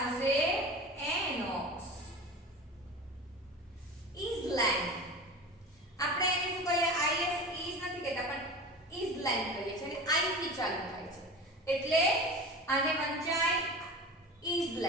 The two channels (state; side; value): normal; both; correlation 0.33